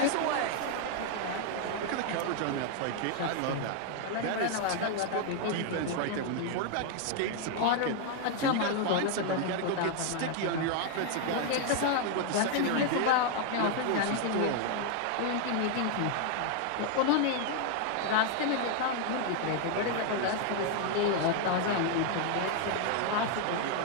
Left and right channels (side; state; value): both; different; correlation 0.00